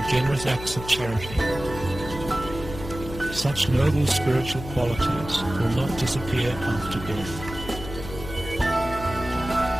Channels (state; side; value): noise; left; hum, 11 dB below the sound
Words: generous acts of charity. Such noble spiritual qualities will not disappear after death.